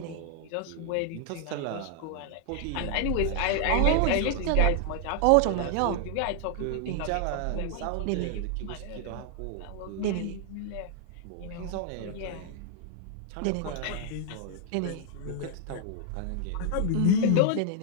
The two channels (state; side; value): different; both; correlation 0.00